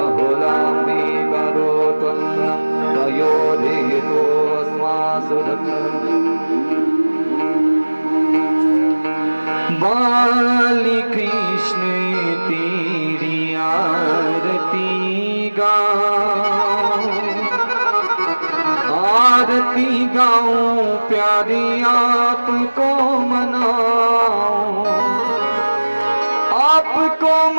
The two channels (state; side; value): inverted; both; correlation -1.00